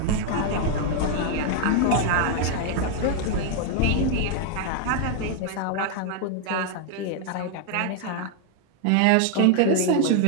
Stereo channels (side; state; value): both; different; correlation 0.00